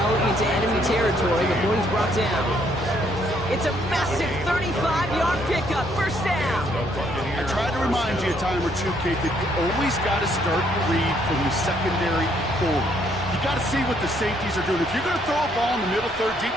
into enemy territory before he's brought down. It's a massive 35-yard pickup. 1st down. I tried to remind you a time or two, Kate, that you always got to start your read from the secondary forward. You got to see what the safeties are doing. If you're going to throw a ball in the middle third,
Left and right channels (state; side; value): noise; left; rumble, 21 dB below the sound